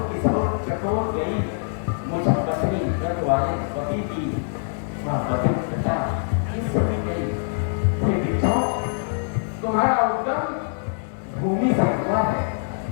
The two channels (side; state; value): right; silent; 63 dB below the other